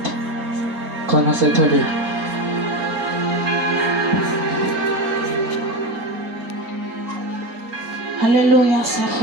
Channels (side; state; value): left; late; 4.3 ms